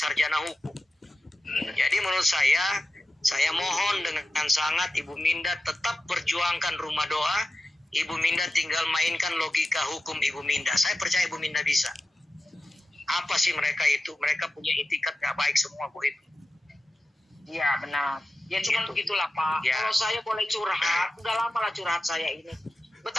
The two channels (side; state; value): both; normal; correlation 0.92